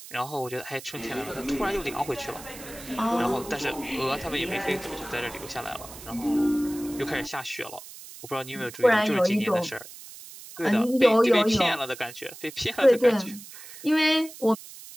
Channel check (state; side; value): noise; right; hiss, 15 dB below the sound